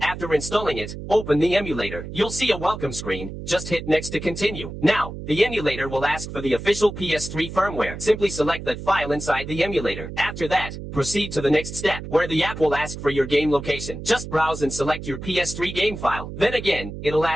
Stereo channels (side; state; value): right; noise; hum, 9 dB below the sound